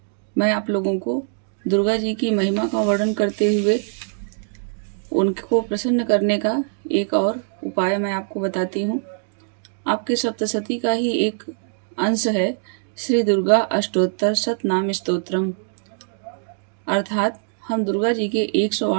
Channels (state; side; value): silent; left; digital silence